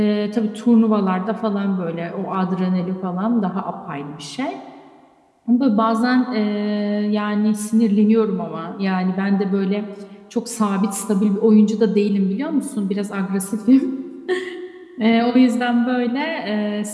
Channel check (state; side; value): identical; both; correlation 1.00